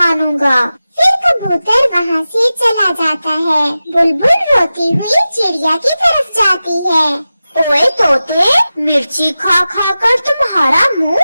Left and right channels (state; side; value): inverted; both; correlation -0.94